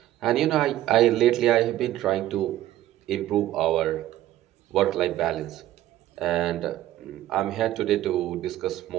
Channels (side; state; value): left; quieter; 13.9 dB